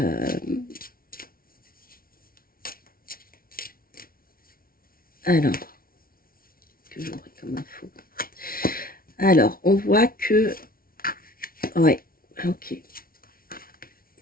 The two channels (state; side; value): late; right; 0.43 ms